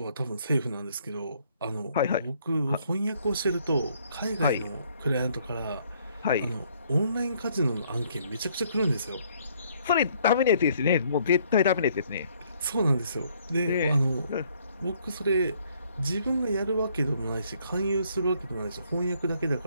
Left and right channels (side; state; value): both; inverted; correlation -0.66